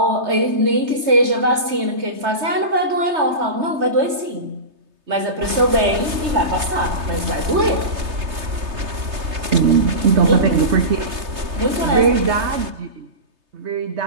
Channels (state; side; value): late; left; 3.3 ms